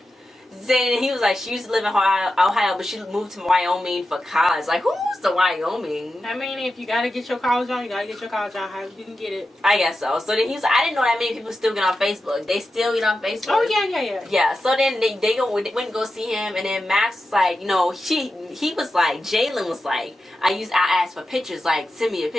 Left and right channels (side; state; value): both; normal; correlation 0.91